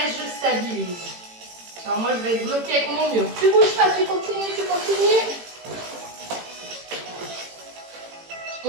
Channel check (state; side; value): late; left; 18 ms